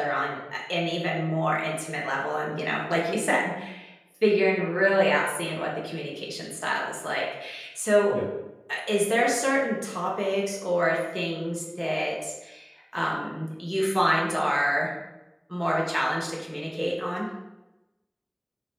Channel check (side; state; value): both; identical; correlation 1.00